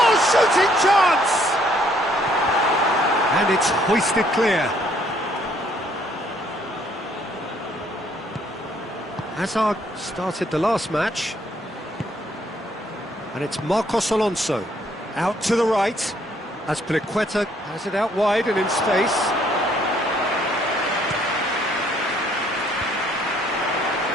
shooting chance! And it's hoisted clear. Hazard started the last match. And it's Marcos Alonso out to the right as Piliqueta has it out wide and in space.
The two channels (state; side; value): normal; both; correlation 0.65